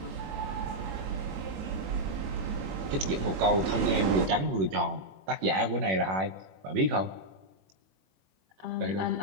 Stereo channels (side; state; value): left; late; 21 ms